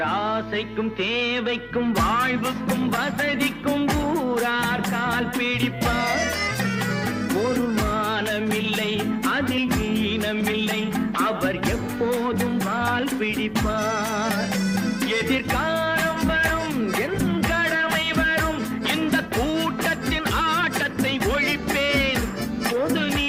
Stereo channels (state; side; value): identical; both; correlation 1.00